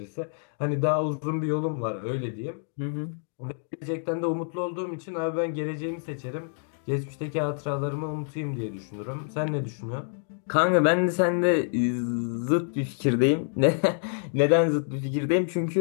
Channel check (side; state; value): right; silent; digital silence